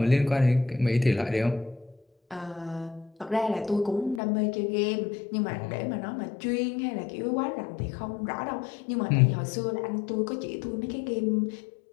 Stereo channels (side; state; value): right; drops out; at 4.2 s